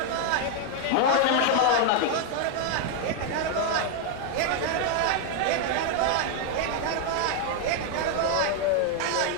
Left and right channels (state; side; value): different; both; correlation 0.00